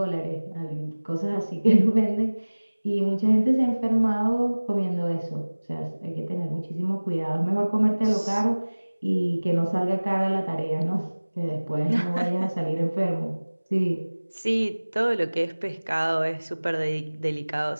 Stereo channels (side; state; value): both; inverted; correlation -1.00